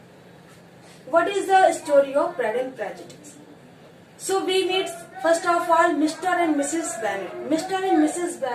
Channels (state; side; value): identical; both; correlation 1.00